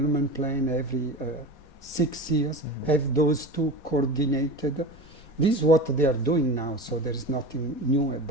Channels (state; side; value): late; right; 4.2 ms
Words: plan every 6 years, have those two coordinated. This is what they are doing now, so there is nothing new